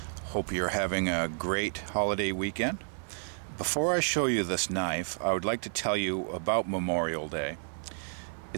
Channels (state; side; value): silent; left; 57 dB below the other